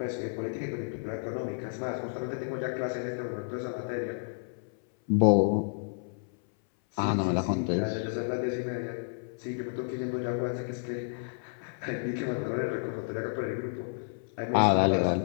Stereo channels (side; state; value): right; silent; 57 dB below the other